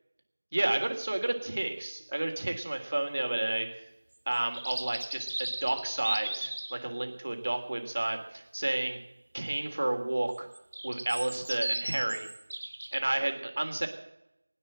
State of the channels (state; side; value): inverted; both; correlation -1.00